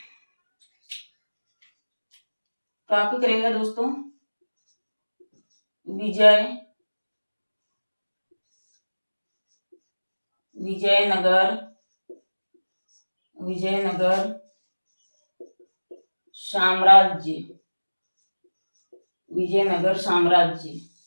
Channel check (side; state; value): both; inverted; correlation -1.00